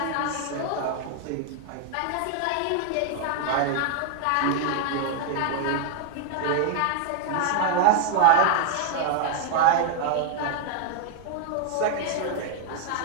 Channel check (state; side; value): different; both; correlation 0.00